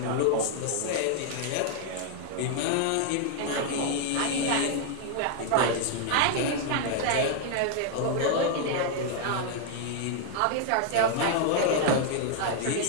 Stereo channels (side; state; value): both; different; correlation 0.00